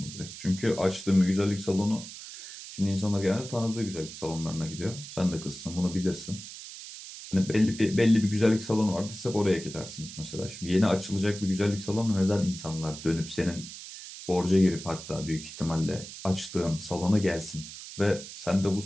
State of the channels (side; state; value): right; noise; hiss, 12 dB below the sound